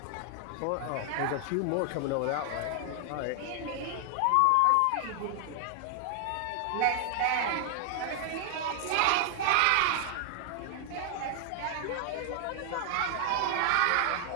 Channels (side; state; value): both; different; correlation 0.00